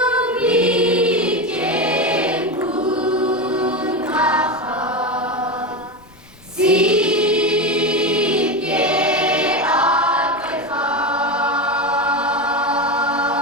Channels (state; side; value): noise; left; rumble, 27 dB below the sound